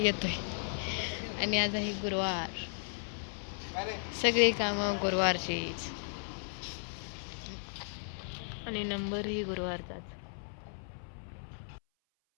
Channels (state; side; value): silent; right; 54 dB below the other